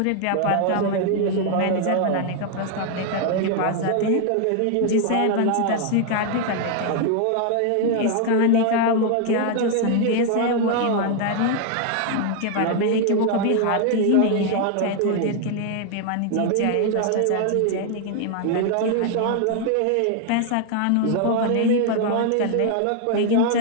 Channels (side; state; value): both; different; correlation 0.00